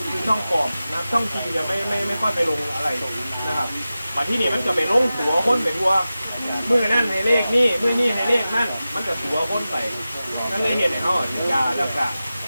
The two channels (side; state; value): both; inverted; correlation -0.94